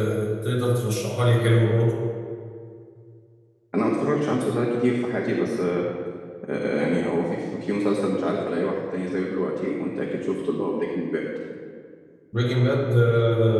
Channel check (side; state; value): both; identical; correlation 1.00